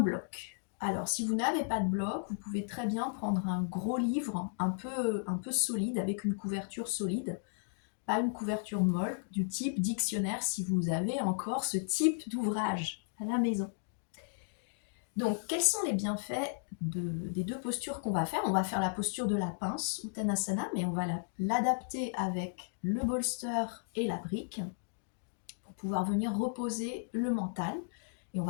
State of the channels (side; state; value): right; silent; digital silence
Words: Alors si vous n'avez pas de bloc, vous pouvez très bien prendre un gros livre un peu solide, avec une couverture solide, pas une couverture molle, du type dictionnaire si vous avez encore ce type d'ouvrage à la maison. Donc, quels sont les bienfaits des deux postures qu'on va faire? On va faire la posture de la pince, Uttanasana, mais on va l'adapter avec le bolster et la brique pour pouvoir venir reposer le mental. Et on